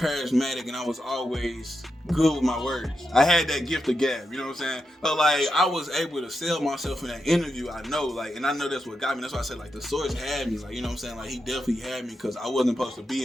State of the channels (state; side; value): normal; both; correlation 0.86